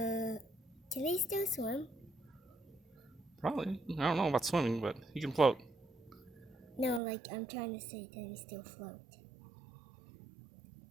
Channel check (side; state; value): left; drops out; at 7.0 s